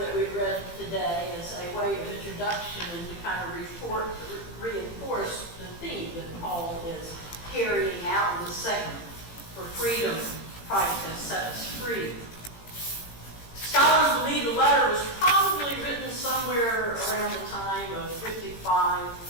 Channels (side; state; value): right; late; 18 ms